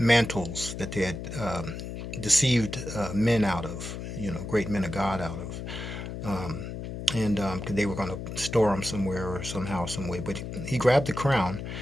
that they had deceived men out of, great men of God out of. And they were going to store them somewhere or somehow, some way. But he grabbed the crown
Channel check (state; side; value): noise; left; hum, 7 dB below the sound